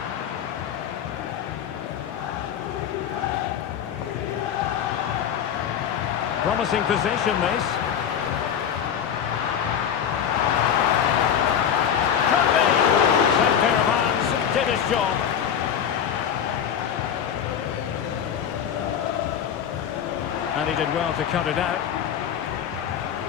Promising position, this. Could be. Same pair of hands, did his job. And he did well to cut it out.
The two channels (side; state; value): right; quieter; 8.7 dB